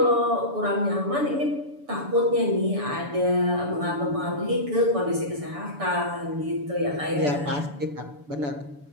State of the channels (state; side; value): late; left; 6.9 ms